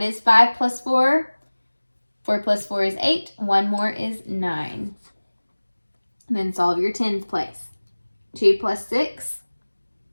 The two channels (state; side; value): inverted; both; correlation -1.00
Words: is 5 plus 4? 4 plus 4 is 8. 1 more is 9. And then solve your tens place. 2 plus 6,